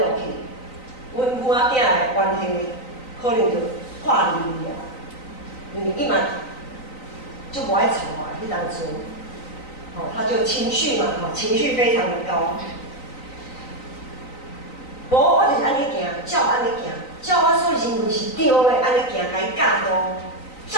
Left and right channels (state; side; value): late; right; 3.9 ms